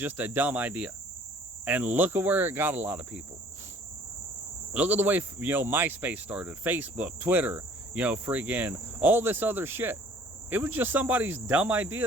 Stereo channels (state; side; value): normal; both; correlation 0.54